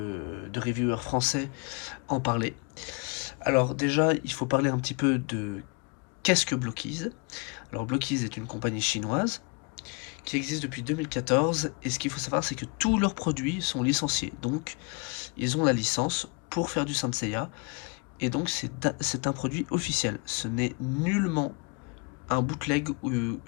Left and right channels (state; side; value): quieter; right; 31.6 dB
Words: reviewers français en parler. Alors déjà, il faut parler un petit peu de qu'est-ce que Blockies. Alors Blockies est une compagnie chinoise qui existe depuis 2014, et ce qu'il faut savoir, c'est que tous leurs produits sont licenciés. Donc, ils ont la licence pour faire du Saint Seiya, et donc c'est un produit officiel. Ce n'est nullement un bootleg ou